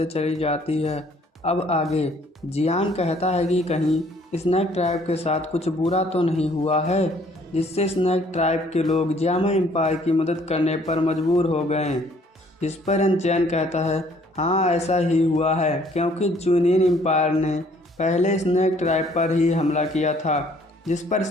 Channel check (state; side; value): normal; both; correlation 0.60